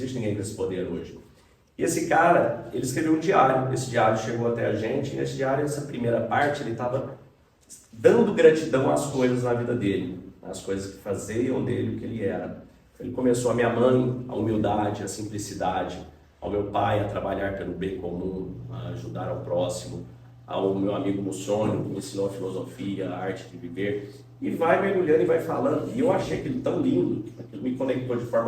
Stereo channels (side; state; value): both; identical; correlation 1.00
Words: ninguém com esse poder hoje. E esse cara, ele escreveu um diário, esse diário chegou até a gente, e nesse diário, essa primeira parte, ele estava dando gratidão às coisas na vida dele, às coisas que faziam dele o que ele era. Ele começou a minha mãe, a humildade, a simplicidade, ao meu pai a trabalhar pelo bem comum, a ajudar ao próximo, ao meu amigo Mussônio, que me ensinou a filosofia, a arte de viver, e vai mergulhando e vai falando. E eu achei aquilo tão lindo, aquilo me conectou de